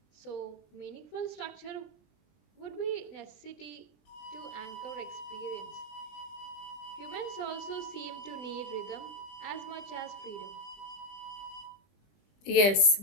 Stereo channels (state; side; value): late; right; 20 ms